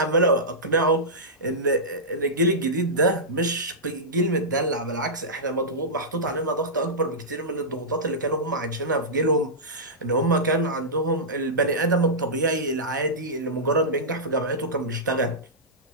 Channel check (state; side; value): normal; both; correlation -0.14